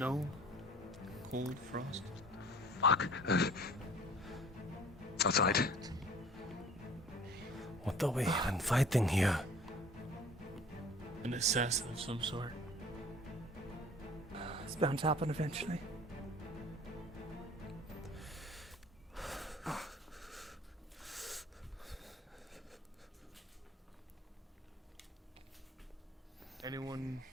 Cold frost? Fuck. It's outside. What are we even fighting here? An assassin of some sort. It's bound to happen eventually.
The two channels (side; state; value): both; normal; correlation 0.48